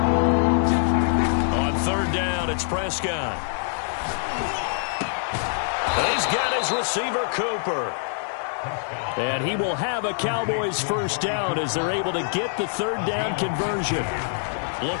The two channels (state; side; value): silent; right; digital silence